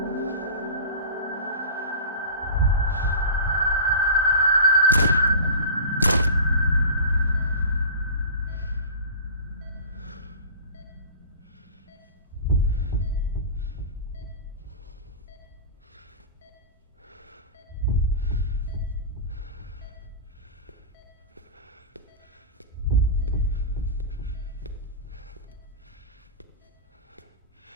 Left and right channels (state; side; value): inverted; both; correlation -0.33